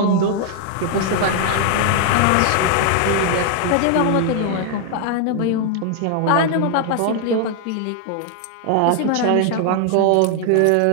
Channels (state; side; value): different; both; correlation 0.00